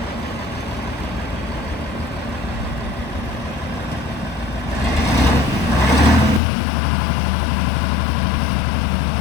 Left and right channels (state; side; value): drops out; right; at 6.4 s